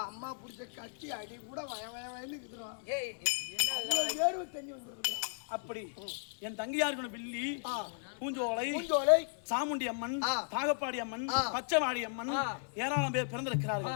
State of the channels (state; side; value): silent; right; 54 dB below the other